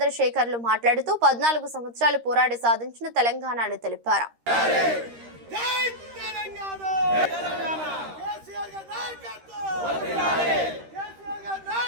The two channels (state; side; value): late; left; 13 ms